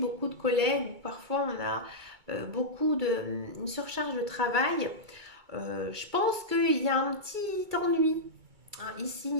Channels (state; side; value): late; left; 2.3 ms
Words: de collègues. Parfois, on a une surcharge de travail. Je pense qu'il y a un petit ennui. Hein, ici,